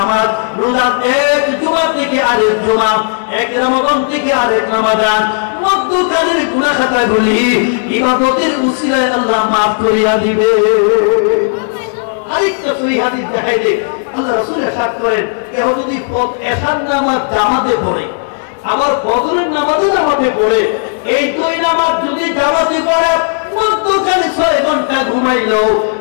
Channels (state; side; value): silent; right; digital silence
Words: রোজা এক জুমা থেকে আরেক জুমা, এক রমজান থেকে আরেক রমজান, মধ্যকালের গুনাহ খাতাগুলি ইবাদতের উসিলায় আল্লাহ maaf করিয়া দিবে। আরেকটা সহিহ হাদিস দেখাই দেই, আল্লাহ রাসূল ইরশাদ করেন, কেউ যদি এশার নামাজ জামাতে পড়ে আবার ফজরের নামাজও জামাতে পড়ে, এই 2 নামাজ যদি জামাতে পড়ে মধ্যখানে 6 ঘন্টা ঘুমাইলো,